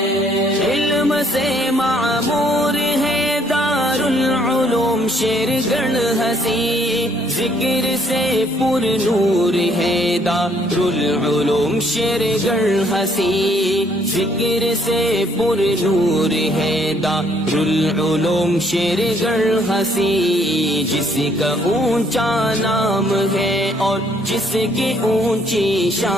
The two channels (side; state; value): both; normal; correlation 0.66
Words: علم سے معمور ہے دارالعلوم شیرگڑھ ہنسی، ذکر سے پر نور ہے دارالعلوم شیرگڑھ ہنسی، ذکر سے پر نور ہے دارالعلوم شیرگڑھ ہنسی۔ جس کا اونچا نام ہے اور جس کی اونچی